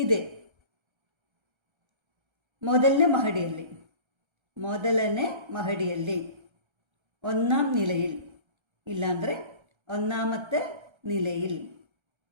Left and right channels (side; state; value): left; late; 1.3 ms